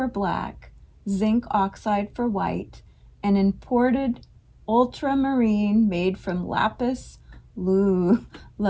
black, zinc oxide for white, and imported ultramarine made from lapis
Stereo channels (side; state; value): both; identical; correlation 1.00